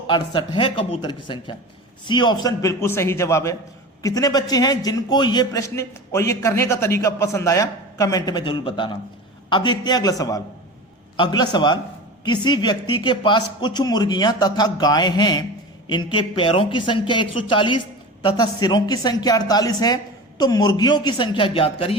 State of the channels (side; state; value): both; normal; correlation 0.31